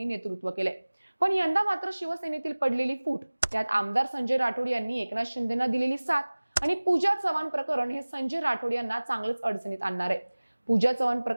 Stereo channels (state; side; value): inverted; both; correlation -1.00